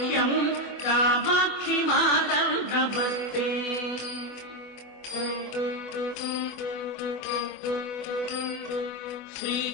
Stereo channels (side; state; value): right; late; 24 ms